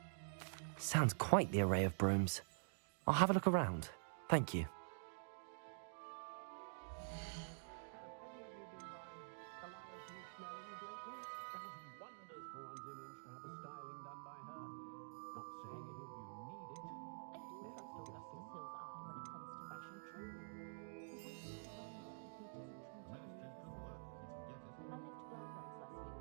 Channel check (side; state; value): left; silent; digital silence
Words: Sounds quite the array of brooms. I'll have a look around. Thank you.